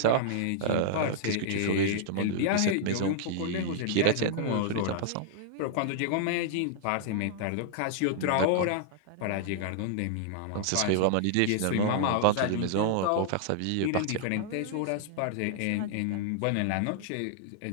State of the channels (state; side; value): different; both; correlation -0.01